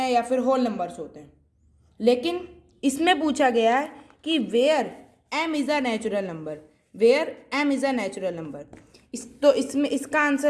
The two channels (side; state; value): both; identical; correlation 1.00